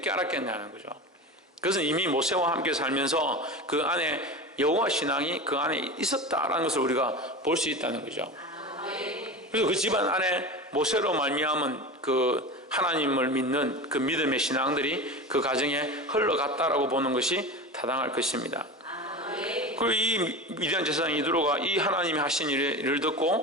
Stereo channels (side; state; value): both; normal; correlation 0.28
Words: 알았겠냐는 거죠. 그것은 이미 모세와 함께 살면서 그 안에 여호와 신앙이 그 안에 있었다라는 것을 우리가 볼 수 있다는 거죠. 그래서 그 집안 안에 모세로 말미암은 그 하나님을 믿는 그 믿음의 신앙들이 그 가정에 흘러갔다라고 보는 것이 타당할 것입니다. 그리고 이 미디안 제사장 이드로가 이 하나님이 하신 일을